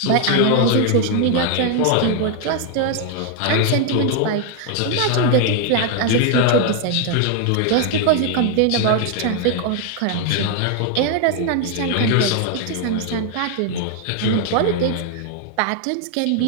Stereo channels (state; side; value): different; both; correlation 0.00